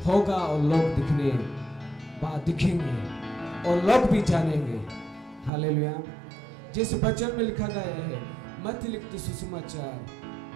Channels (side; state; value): left; drops out; at 5.5 s